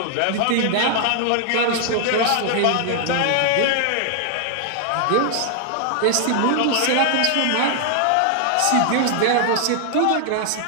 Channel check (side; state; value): both; different; correlation 0.00